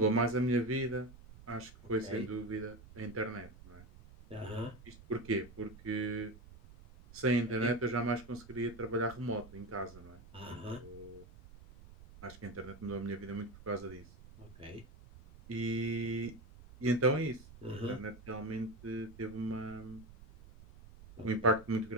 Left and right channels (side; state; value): right; noise; rumble, 19 dB below the sound